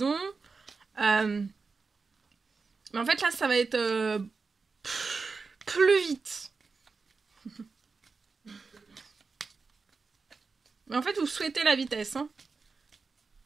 Mais en fait, là, ça va être plus vite. Mais en fait, vous souhaitez la vitesse, hein.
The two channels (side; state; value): left; quieter; 4.6 dB